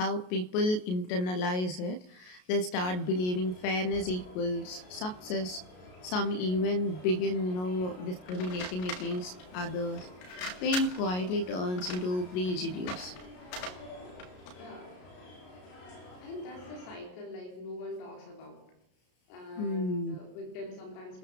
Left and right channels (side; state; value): right; late; 33 ms